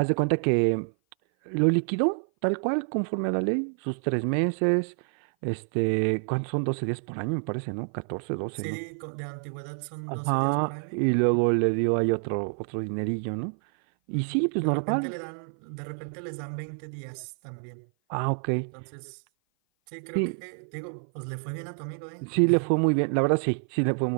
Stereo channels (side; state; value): left; silent; 56 dB below the other